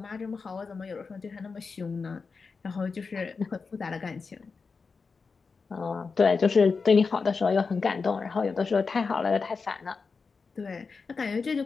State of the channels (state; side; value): quieter; right; 4.8 dB